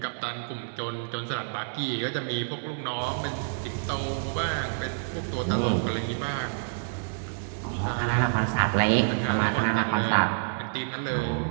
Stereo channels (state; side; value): silent; left; 59 dB below the other